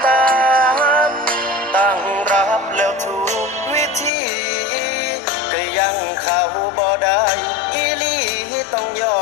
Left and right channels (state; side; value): drops out; right; at 4.1 s